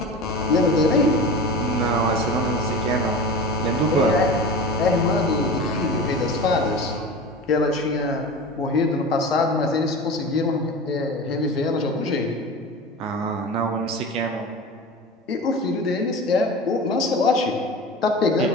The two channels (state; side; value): normal; both; correlation 0.32